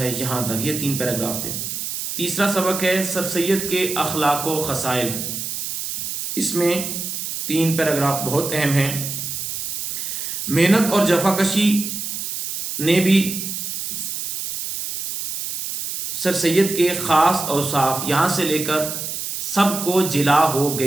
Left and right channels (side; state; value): right; noise; hiss, 5 dB below the sound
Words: यहाँ तक। ये 3 पैराग्राफ थे। तीसरा सबक है सर सैयद के अखलाक व खसाइल। इसमें 3 पैराग्राफ बहुत अहम हैं। मेहनत और जफाकशी ने भी सर सैयद के ख़ास औसाफ यहाँ से लेकर सबको जिला हो